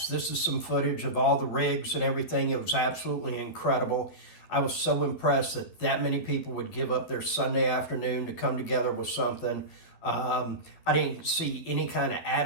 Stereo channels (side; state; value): right; late; 12 ms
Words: This is some footage of all the rigs and everything. It was absolutely incredible. I was so impressed that many people would give up their Sunday afternoon to come together with something. I didn't see any kind of